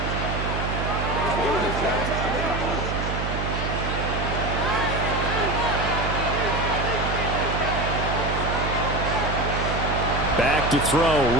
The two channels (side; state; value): right; noise; hum, 3 dB below the sound